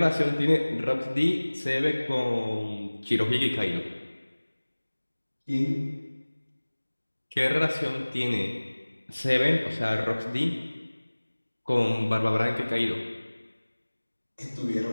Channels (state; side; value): inverted; both; correlation -1.00